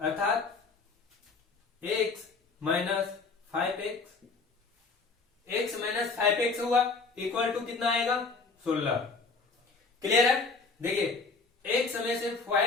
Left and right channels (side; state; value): right; quieter; 4.3 dB